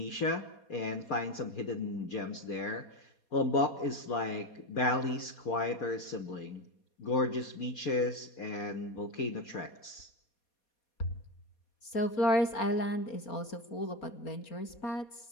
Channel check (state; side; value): late; right; 4.2 ms